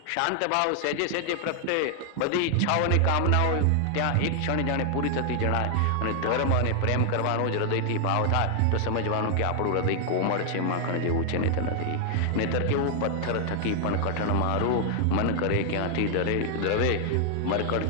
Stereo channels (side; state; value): both; different; correlation 0.00